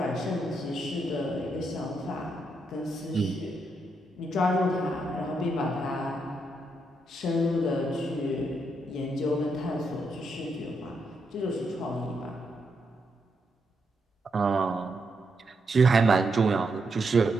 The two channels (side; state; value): both; normal; correlation 0.80